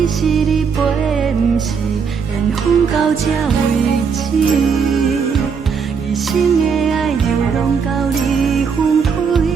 是你陪，不是缘分到这为止。一生的爱流浪到你分开，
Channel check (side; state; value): left; quieter; 5.9 dB